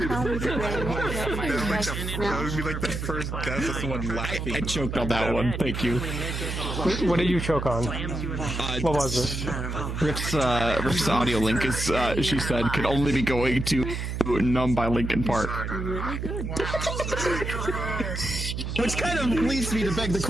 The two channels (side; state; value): right; noise; hum, 4 dB below the sound